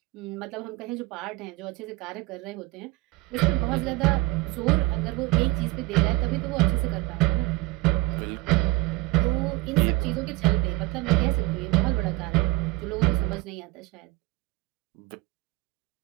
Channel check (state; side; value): quieter; left; 21.4 dB